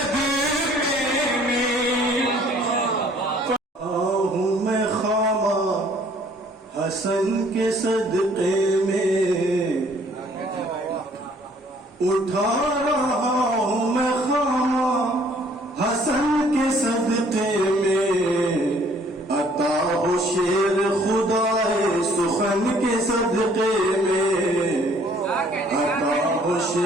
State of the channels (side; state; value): both; normal; correlation 0.59